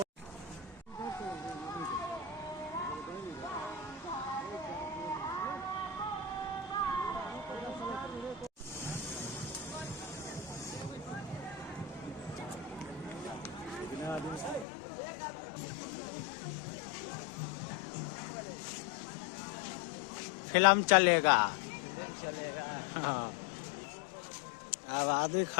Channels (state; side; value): drops out; right; at 14.7 s